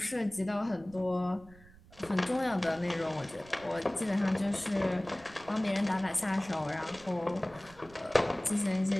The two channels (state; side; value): noise; right; rumble, 23 dB below the sound